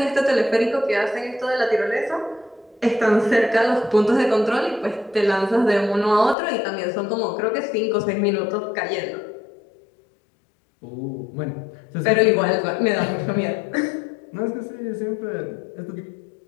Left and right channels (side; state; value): right; drops out; at 6.4 s